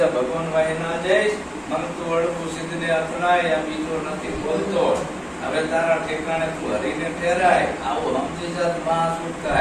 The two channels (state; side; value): identical; both; correlation 1.00